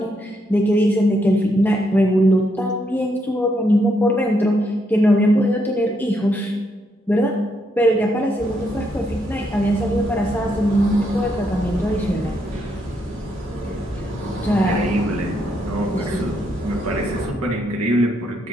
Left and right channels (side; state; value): both; normal; correlation 0.77